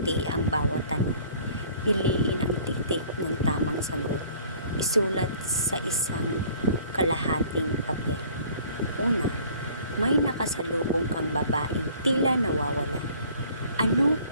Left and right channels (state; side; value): inverted; both; correlation -0.53